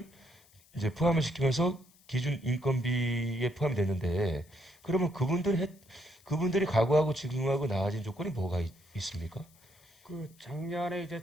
이제 포함을 시키면서 기준 인건비에 포함이 됐는데 그러면 그분들이 과거하고 지금하고 나아진 조건이 뭐가 있습니까? 그 작년에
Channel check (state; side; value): noise; left; hiss, 29 dB below the sound